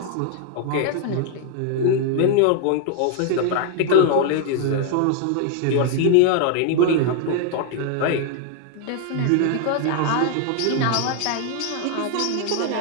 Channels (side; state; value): both; different; correlation 0.00